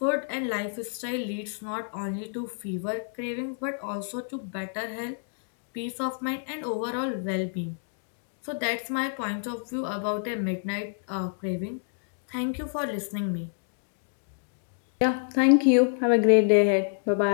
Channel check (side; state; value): right; silent; digital silence